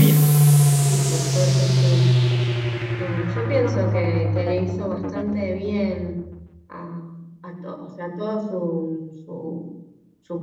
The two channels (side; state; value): both; identical; correlation 1.00